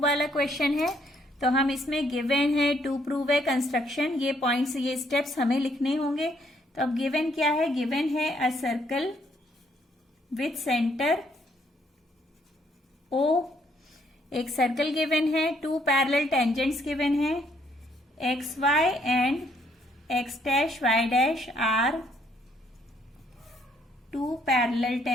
वाला क्वेश्चन है। तो हम इसमें गिवन है टू प्रूव है कंस्ट्रक्शन, ये पॉइंट्स, ये स्टेप्स हमें लिखने होंगे। तो अब गिवन क्या है? गिवन है a circle with centre O, एक सर्कल गिवन है, टू पैरेलल टेंजेंट्स गिवन है, X Y and X dash Y dash are two parallel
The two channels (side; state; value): both; normal; correlation 0.69